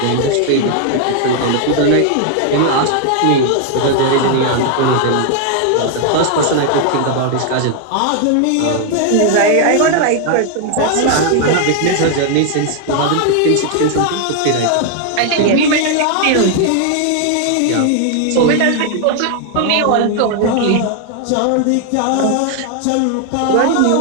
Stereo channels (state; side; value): different; both; correlation 0.00